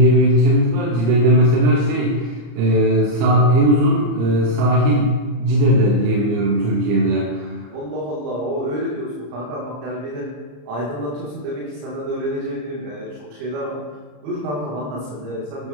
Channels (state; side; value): late; left; 34 ms